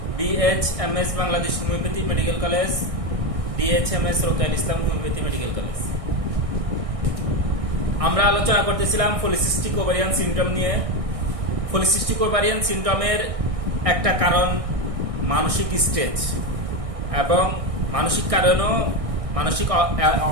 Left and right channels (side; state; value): left; late; 1.6 ms